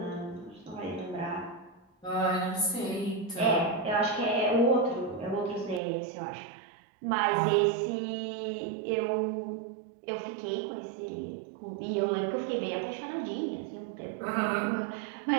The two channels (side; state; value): left; drops out; at 5.8 s